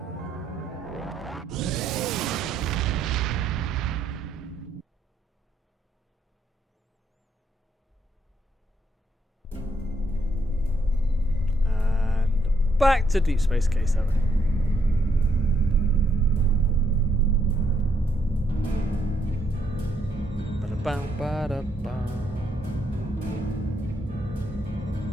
Back to Deep Space K7. Ba-da-bam, ba-da-bam.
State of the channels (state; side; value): normal; both; correlation 0.74